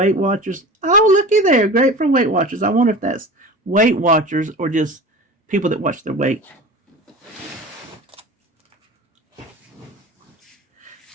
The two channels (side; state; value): both; normal; correlation 0.34